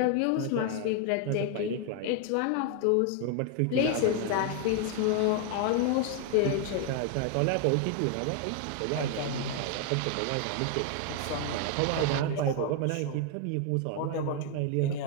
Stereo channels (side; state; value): both; different; correlation 0.00